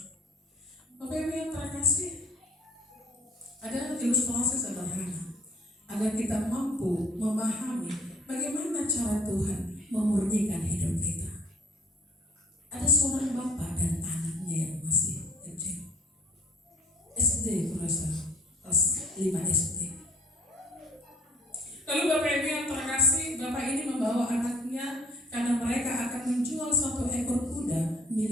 Bapak Ibu yang terkasih, ada ilustrasi sederhana agar kita mampu memahami bagaimana cara Tuhan memurnikan hidup kita. Ada seorang bapak dan anaknya yang masih kecil, SD kurasa kelas 5 SD. Lalu Bapak Ibu yang terkasih, bapak ini membawa anaknya karena mereka akan menjual satu ekor kuda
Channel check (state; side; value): normal; both; correlation 0.56